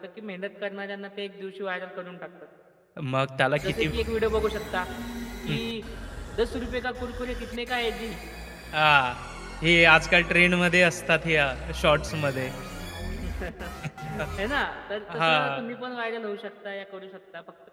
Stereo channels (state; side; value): identical; both; correlation 1.00